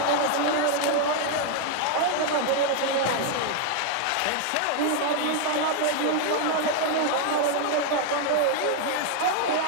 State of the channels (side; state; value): both; different; correlation 0.00